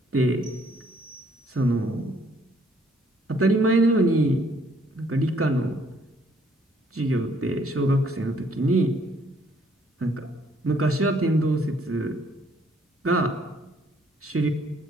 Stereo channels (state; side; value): normal; both; correlation 0.65